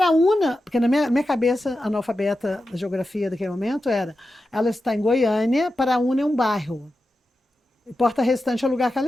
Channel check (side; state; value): both; normal; correlation 0.91